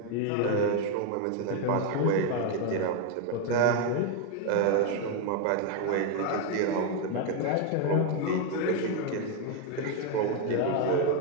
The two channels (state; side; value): different; both; correlation 0.01